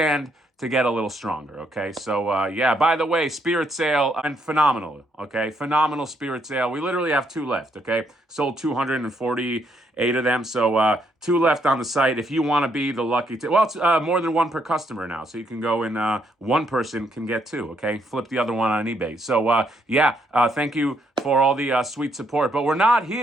to get a little stronger. Okay, so yeah. By the way, Spirit Sale and phenomenal. Okay, phenomenal Spirit Sale. We literally have two left. Okay, sold 248 of them. So two left on the site. If you want to be the lucky, well, it's more than one per customer now. So you can go and one person can get two. Okay, flip the other one on eBay. So yeah, thank you for all the sweet support. But we're not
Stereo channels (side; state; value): both; normal; correlation 0.74